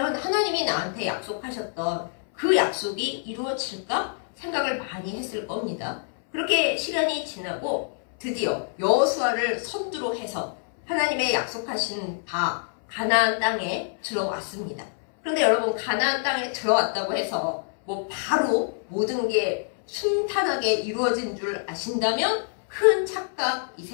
하나님이 나한테 약속하셨던 그 약속이 이루어질까? 생각을 많이 했을 겁니다. 그렇게 시간이 지나고 드디어 여호수아를 선두로 해서 하나님의 약속하신 바 가나안 땅에 들어왔습니다. 그런데 여러분 가나안 땅에 들어왔다고 해서 뭐 바로 모든 게 순탄하게 이루어진 줄 아신다면 큰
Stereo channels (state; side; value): silent; right; 61 dB below the other